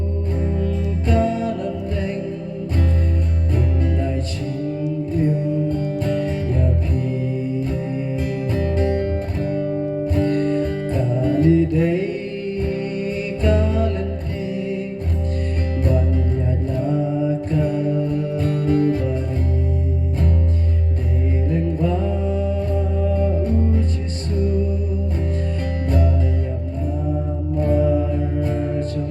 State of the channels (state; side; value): identical; both; correlation 1.00